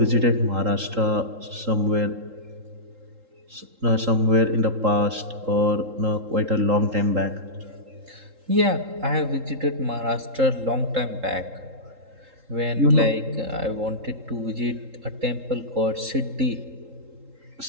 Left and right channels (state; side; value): late; left; 3.7 ms